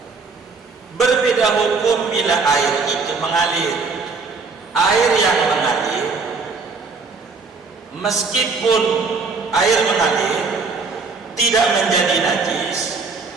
Berbeda hukum bila air itu mengalir. Air yang mengalir, meskipun air mengalir tidak menjadi najis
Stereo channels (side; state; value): left; quieter; 4.4 dB